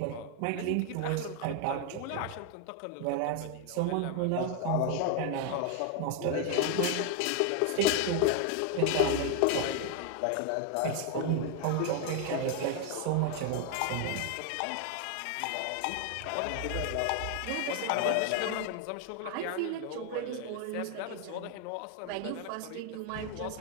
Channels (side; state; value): both; different; correlation 0.01